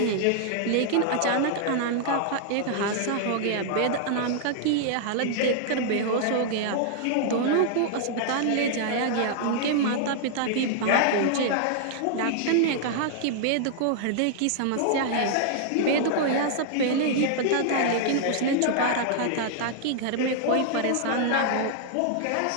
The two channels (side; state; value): both; different; correlation -0.01